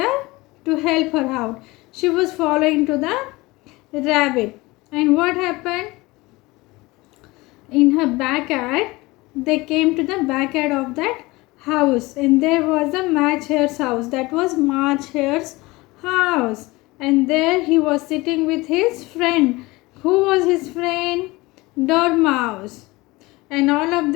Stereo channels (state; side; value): quieter; right; 21.8 dB